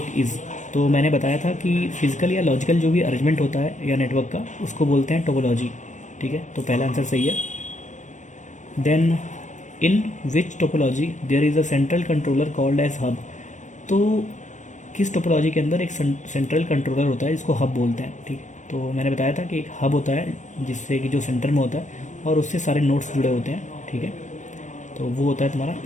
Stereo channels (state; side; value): late; right; 0.35 ms